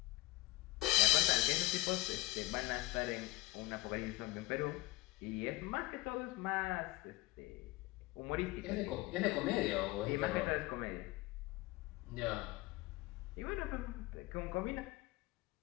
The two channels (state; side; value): quieter; right; 19.6 dB